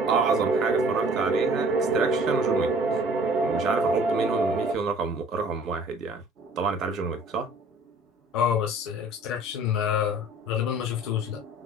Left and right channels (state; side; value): normal; both; correlation 0.51